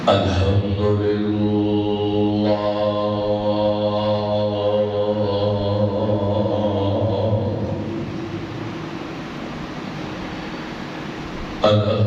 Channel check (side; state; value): both; identical; correlation 1.00